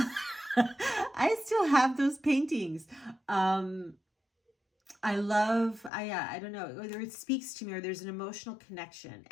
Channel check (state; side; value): drops out; right; at 5.9 s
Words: I still have those paintings. I don't know, whether it speaks to me or there's an emotional connection.